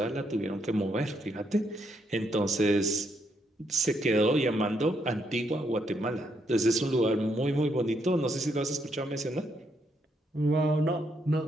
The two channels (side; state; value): both; normal; correlation 0.76